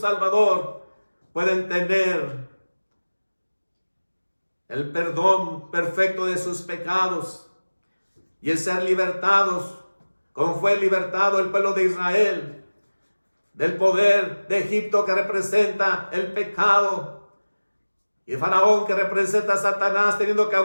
pueden tener el perdón perfecto de sus pecados y el ser libertados, como fue libertado el pueblo de Israel del poder de Egipto, que representa el pecado, y Faraón, que representa a Satanás teniendo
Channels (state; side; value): inverted; both; correlation -1.00